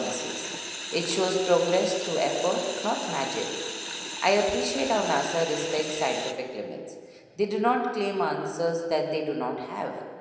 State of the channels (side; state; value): both; identical; correlation 1.00